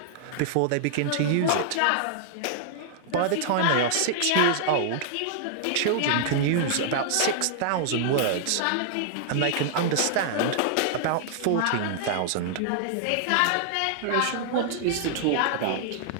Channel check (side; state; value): both; different; correlation -0.01